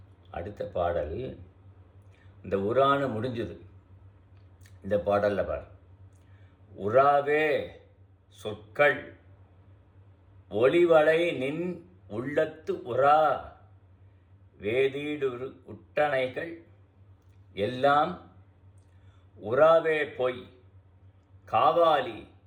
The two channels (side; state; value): both; identical; correlation 1.00